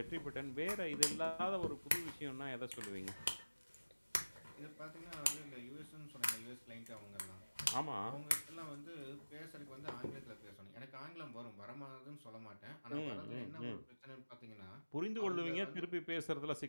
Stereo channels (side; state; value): both; inverted; correlation -1.00